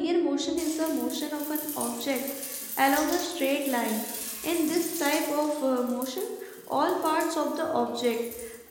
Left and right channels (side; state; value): both; identical; correlation 1.00